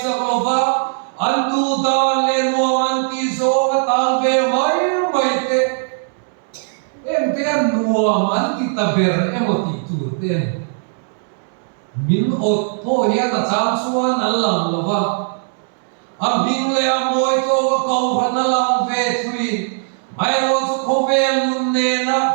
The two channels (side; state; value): left; silent; 67 dB below the other